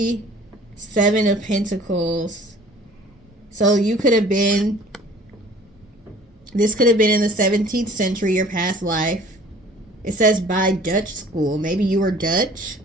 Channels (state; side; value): normal; both; correlation 0.50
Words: 7 of Pentacles. So you could have been, this could have been in the 17th century, your past life. It says by Dutch school. Maybe you were Dutch.